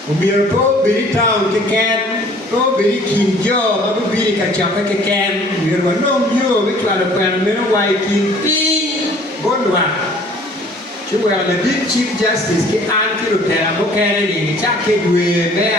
o biru to biri town ke ken to biri kinjo ma biri ka chapa ke ken biru no yo we kla pen mero wai kin pi bonwa chuwa the big chief justice ke an ki rutera mo kene ni cha ke dwe me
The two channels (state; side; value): normal; both; correlation 0.53